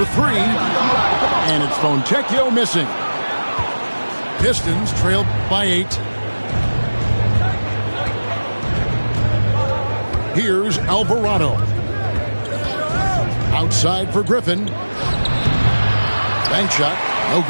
3. And it's Fontecchio missing. Pistons trailed by 8. Here's Alvarado. Outside for Griffin. Bank shot. No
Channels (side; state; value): both; inverted; correlation -1.00